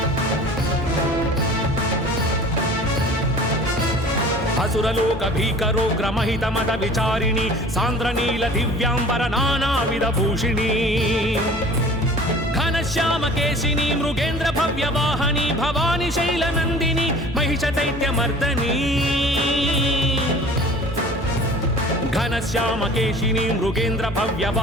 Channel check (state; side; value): normal; both; correlation 0.44